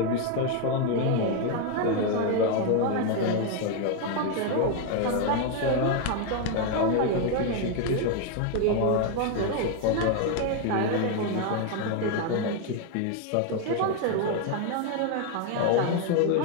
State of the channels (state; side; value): different; both; correlation 0.01